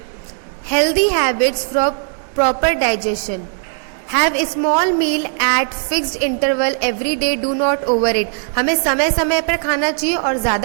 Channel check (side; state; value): left; silent; 60 dB below the other